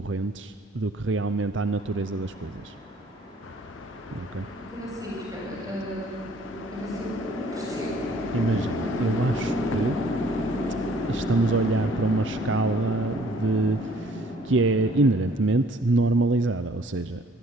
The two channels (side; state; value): both; normal; correlation 0.57